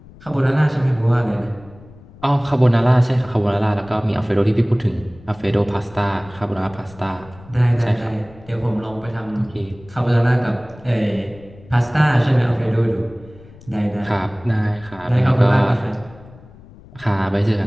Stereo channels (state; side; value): noise; left; rumble, 22 dB below the sound